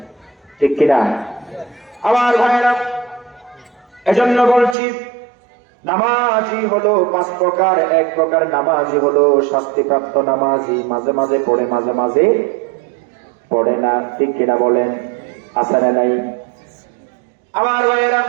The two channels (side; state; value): left; drops out; at 4.8 s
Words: ঠিক কিনা আমার ভাইরা? এজন্য বলছি, নামাজি হলো 5 প্রকার। এক প্রকার নামাজি হলো শাস্তিপ্রাপ্ত নামাজি, মাঝে মাঝে পড়ে, মাঝে মাঝে পড়ে না, ঠিক কিনা বলেন? আছে না নাই আমার ভাইয়েরা?